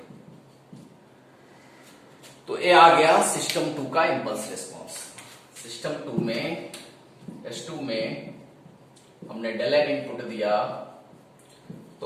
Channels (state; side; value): identical; both; correlation 1.00